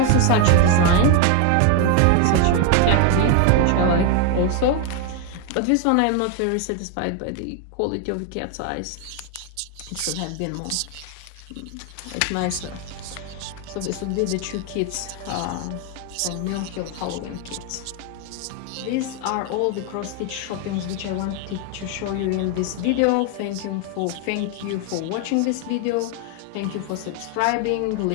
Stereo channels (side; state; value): both; different; correlation 0.01